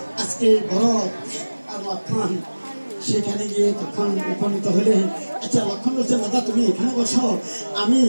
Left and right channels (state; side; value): inverted; both; correlation -1.00